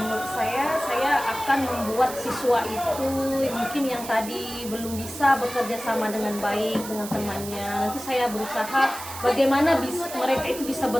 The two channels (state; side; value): noise; right; hiss, 11 dB below the sound